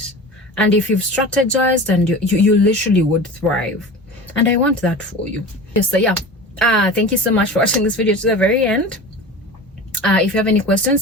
and if you've strategized, and you literally would thrive, and I want that for you. So yeah, thank you so much for watching this video to the very end. If you have any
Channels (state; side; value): normal; both; correlation 0.34